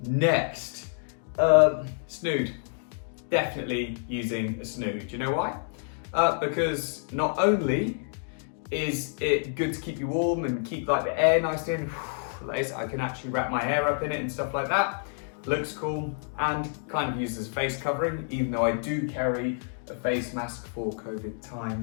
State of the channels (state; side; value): silent; right; digital silence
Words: Next, snood. Definitely using a snood. Do you know why? Because not only Is it good to keep you warm and keep like the air nice in? I can actually wrap my hair up in it and stuff like that. Looks cool and kind of used as a face covering, even though I do carry a face mask for COVID